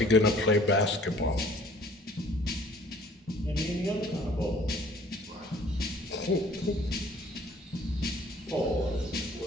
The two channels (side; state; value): both; normal; correlation 0.55